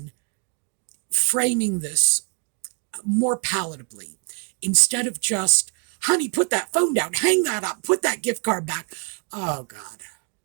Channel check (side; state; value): left; quieter; 39.1 dB